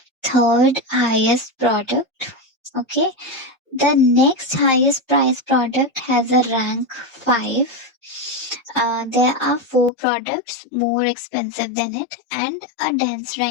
third highest product. Okay, the next highest price product has a rank 5. There are 4 products more expensive than it and a dense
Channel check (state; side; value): drops out; right; at 9.9 s